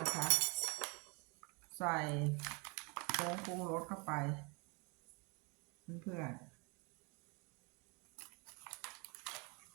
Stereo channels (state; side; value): quieter; left; 31.2 dB